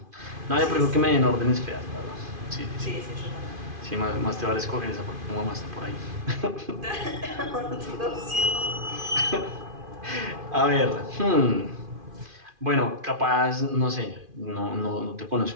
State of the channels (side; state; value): left; late; 2.5 ms